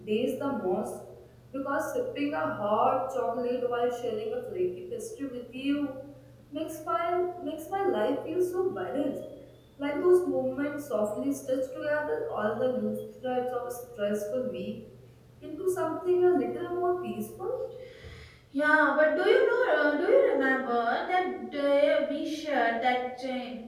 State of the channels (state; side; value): identical; both; correlation 1.00